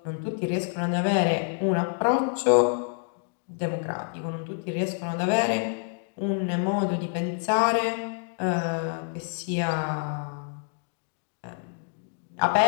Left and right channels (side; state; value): right; silent; 56 dB below the other